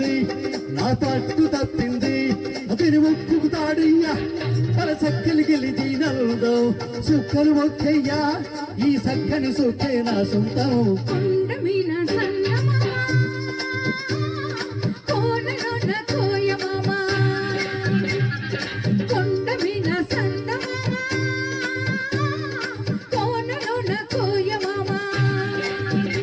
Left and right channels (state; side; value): identical; both; correlation 1.00